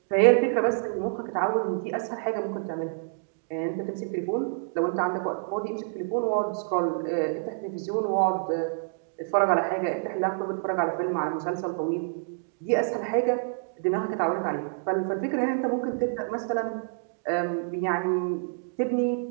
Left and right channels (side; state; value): left; silent; digital silence